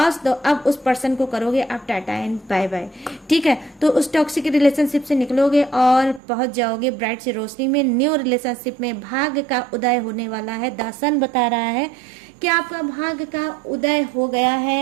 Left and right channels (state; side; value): drops out; left; at 6.2 s